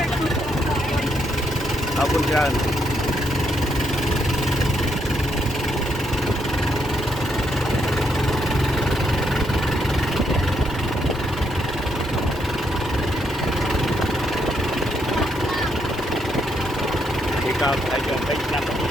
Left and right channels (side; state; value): both; normal; correlation 0.76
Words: ở bên trên thì có thấy chưa thấy năm